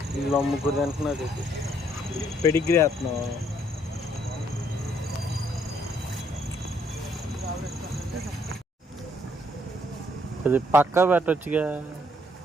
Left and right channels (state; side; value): normal; both; correlation 0.68